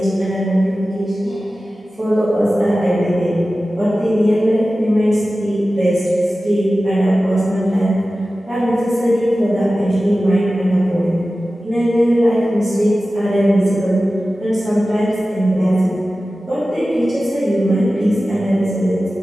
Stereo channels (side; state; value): both; normal; correlation 0.95